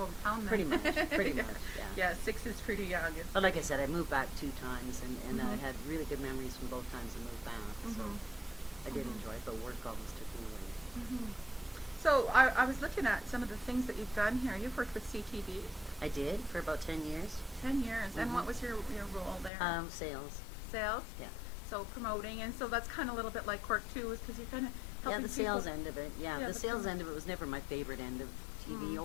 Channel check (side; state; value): right; drops out; at 19.5 s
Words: then. Pretty much, pretty much, yeah. Yeah, 6 is pretty young. It's But like I said, I moved back 2 times, and I Mhm. had really good memories from both times I moved back. So Mhm. I did Mhm. enjoy it, but work always took me away. Mhm. So I was looking at some of the things that you've done here. You've worked with CTV I did for about 10 years. 10 years. And Mhm. what was your role there? Sales. Sales? Yeah. So promoting. And so that's kind of a little bit like Cork too, is because you're kind of Yeah, helping the sales people. end of it. Yeah, Yeah, the the sales promo- end of it was never my favorite end of TV